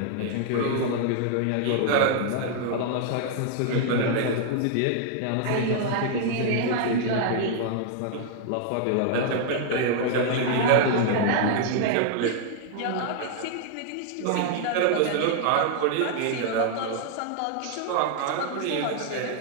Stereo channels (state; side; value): different; both; correlation 0.00